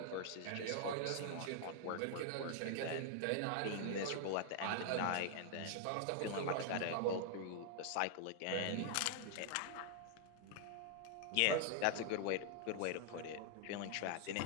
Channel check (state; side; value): different; both; correlation 0.00